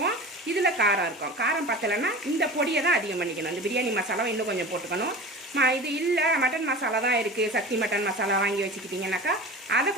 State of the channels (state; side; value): normal; both; correlation 0.34